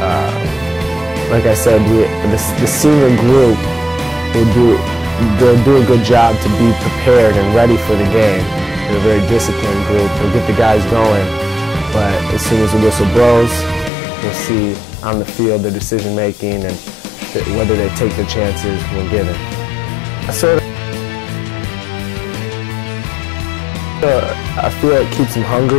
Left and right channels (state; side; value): drops out; right; at 13.9 s